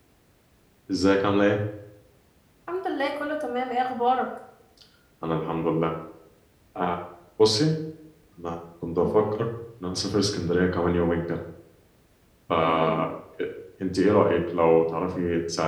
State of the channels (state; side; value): identical; both; correlation 1.00